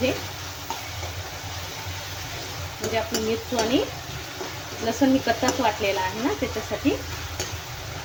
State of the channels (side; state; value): both; identical; correlation 1.00